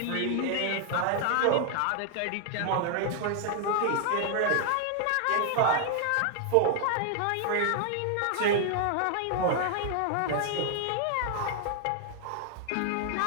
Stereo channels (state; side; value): different; both; correlation 0.00